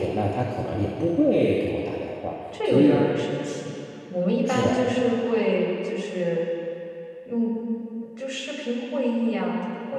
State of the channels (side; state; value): both; identical; correlation 1.00